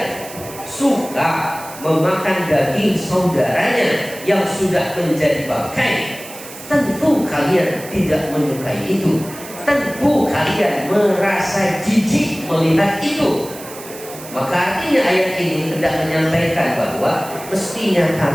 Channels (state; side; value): noise; right; hiss, 15 dB below the sound